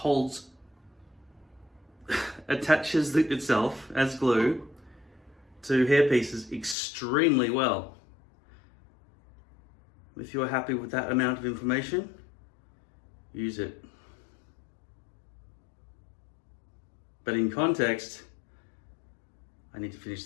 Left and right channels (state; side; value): drops out; right; at 6.8 s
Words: attaches itself as glue to hairpieces extremely well. If you're happy with that amount of information, use it. But in context, I need to finish